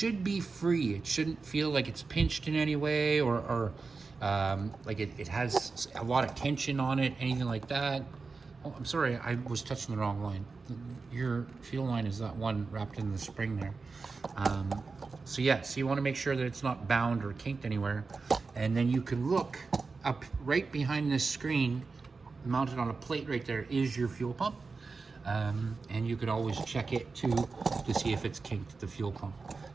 be free. It shouldn't feel like it's pinched in any way or like it has a lot of tension on it, anything like that. Oh, I'm sorry, I was touching the wrong line. Your fuel line is that one wrapped in the spring there. So yeah, so you want to make sure that it's not bound or kinked anywhere. And then you can look up right behind this screen, mounted on a plate right there, is your fuel pump. And you could always check it to see if it's kinked, the fuel pump.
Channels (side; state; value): left; quieter; 4.3 dB